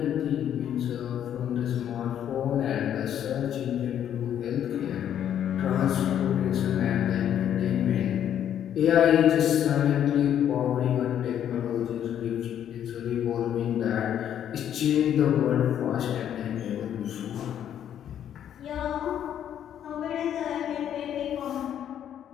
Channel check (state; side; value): quieter; right; 9.9 dB